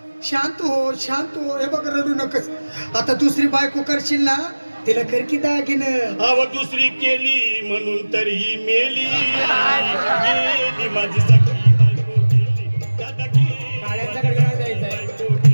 शांत हो. हे बघ रडू नकस. आता दुसरी बायको करशील ना तिला कर की दागिनं. अव दुसरी केली म्हणून तर ही मेली गेली माझी सखी बायको गेली. दादा गेली गाड्यांचा गडगडाट द्यायचा आहे. बायको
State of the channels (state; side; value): inverted; both; correlation -1.00